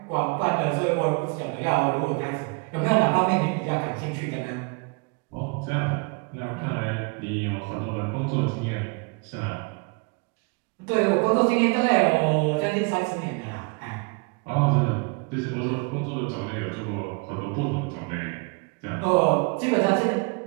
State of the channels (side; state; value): left; quieter; 30.8 dB